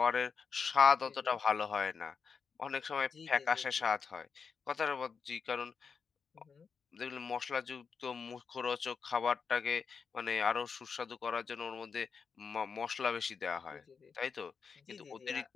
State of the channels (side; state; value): right; quieter; 5.7 dB